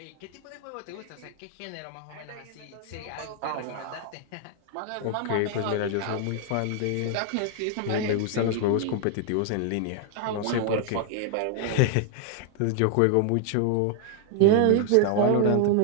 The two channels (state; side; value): different; both; correlation 0.00